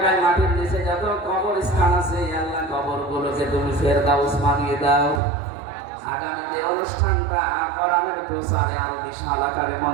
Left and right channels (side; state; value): left; drops out; at 5.2 s